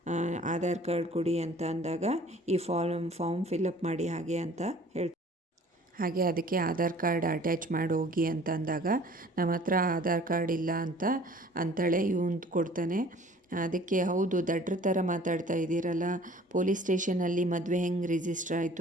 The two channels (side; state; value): both; normal; correlation 0.51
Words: ಆಧಾರ್ ಕಾರ್ಡ್ ಕೊಡಿ ಅಂತ ಅಂದಾಗ ಈ ಫಾರ್ಮ್ ಫಿಲಪ್ ಮಾಡಿ ಹಾಗೆ ಅಂತ ಹೇಳ್ತಾರೆ. ಹಾಗೆ ಅದಕ್ಕೆ ಆಧಾರ್ ಕಾರ್ಡ್ ಅಟ್ಯಾಚ್ ಮಾಡಿ ಹೋಗಿ ಅಂತ ಅಂದಾಗ ನಮ್ಮ ಹತ್ರ ಆಧಾರ್ ಕಾರ್ಡ್ ಇಲ್ಲ ಅಂತ ಅಂತಾಳೆ. ಇವನು ಕೊಡ್ತಾನೆ. ಅದಕ್ಕೆ ಹೌದು ದಡ್ರ ಥರ ಮಾತಾಡ್ತಾ ಇದ್ದೀರಲ್ಲ, ಪೊಲೀಸ್ ಸ್ಟೇಷನಲ್ಲಿ ಮದುವೆ ಹೆಂಗೆ ರಿಜಿಸ್ಟರ್